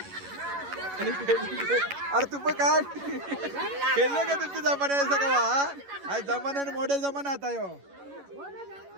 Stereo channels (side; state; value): left; late; 11 ms